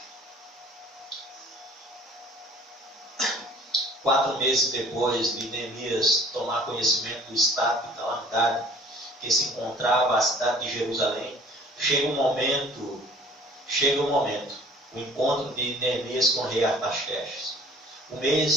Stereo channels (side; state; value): both; normal; correlation 0.51